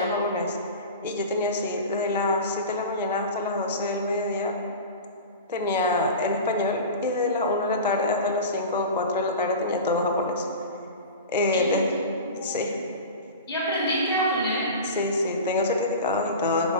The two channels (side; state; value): both; inverted; correlation -0.31